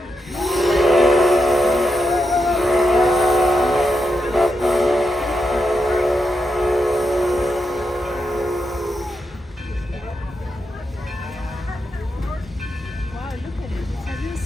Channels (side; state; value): both; normal; correlation 0.85